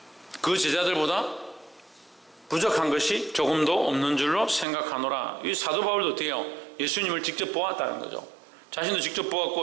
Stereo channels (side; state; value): left; drops out; at 4.7 s